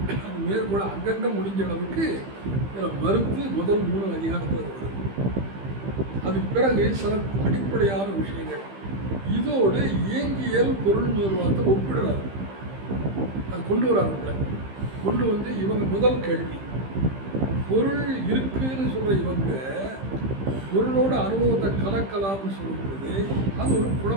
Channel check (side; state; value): left; late; 15 ms